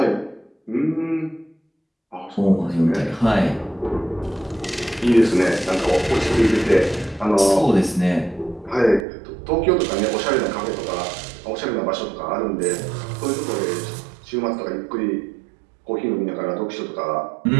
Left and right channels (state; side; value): drops out; left; at 9.1 s